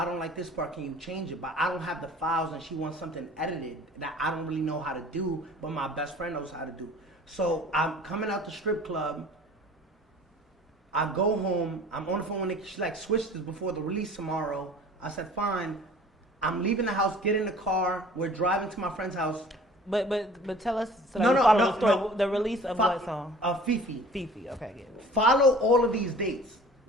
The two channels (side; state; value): both; normal; correlation 0.47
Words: don't like this part. Can you change it? But I don't have the files, and she wants something edited that I don't really know how to do, but my best friend knows how to do. So I'm coming out the strip club. I go home. I'm on the phone with Nikki. She's like, switch this before the release tomorrow. I said, fine. I'm leaving the house, get in the car. We're driving to my friend's house. But tell us so that we follow the story. The release of what song? Fifi. Fifi. Okay, get it. Follow all of these dates.